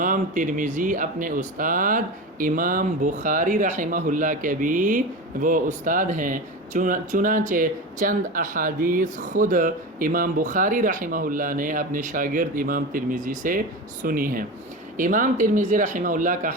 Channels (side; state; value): both; normal; correlation 0.25